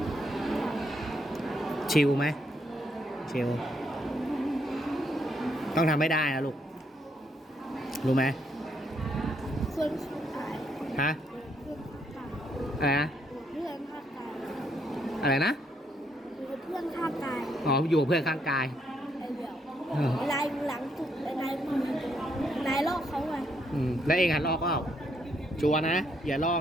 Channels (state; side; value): normal; both; correlation 0.74